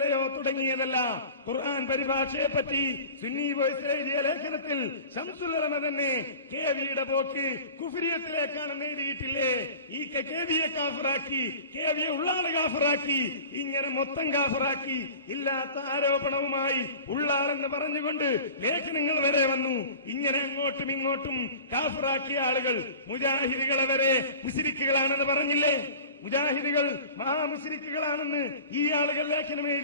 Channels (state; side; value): inverted; both; correlation -0.40